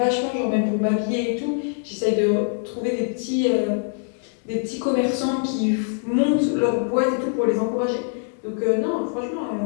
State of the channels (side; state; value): right; silent; 63 dB below the other